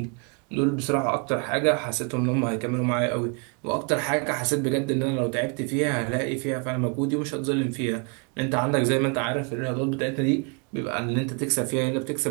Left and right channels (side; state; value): left; quieter; 35.9 dB